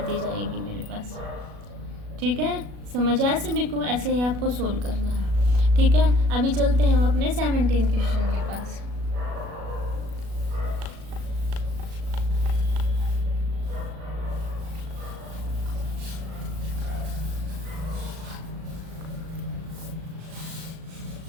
जाएगी मेरे पास। ठीक है, समझ आया सभी को, ऐसे ही आपको सोल्व करना है। ठीक है, अभी चलते हैं हम अपने 17 क्वेश्चन के पास।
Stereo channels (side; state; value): left; late; 37 ms